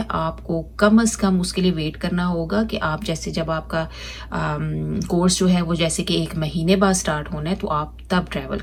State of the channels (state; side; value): identical; both; correlation 1.00